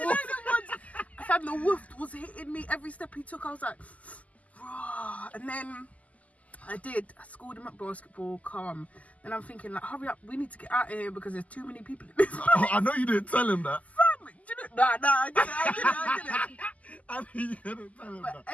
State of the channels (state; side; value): late; right; 0.073 ms